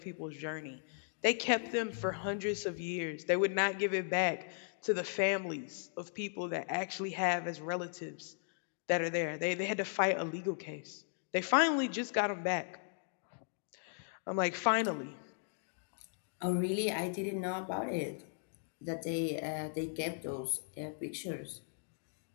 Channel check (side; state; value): right; silent; digital silence